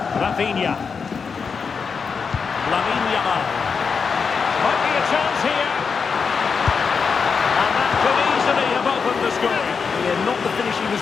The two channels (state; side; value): quieter; right; 5.6 dB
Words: Rafinha. Lamine Yamal. Might be a chance here. And that could easily have opened the scoring. Yeah, not the finish he was